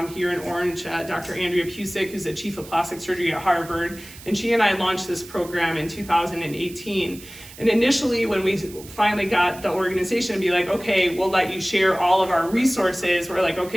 here in Orange, Dr. Andrea Pusick, who's the chief of plastic surgery at Harvard, and she and I launched this program in 2018. And initially, when we finally got the organization to be like, okay, we'll let you share all of our resources, we're like,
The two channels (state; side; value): noise; right; hiss, 18 dB below the sound